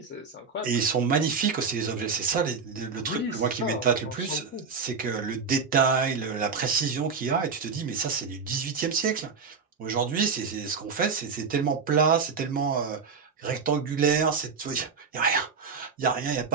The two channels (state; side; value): quieter; left; 5.3 dB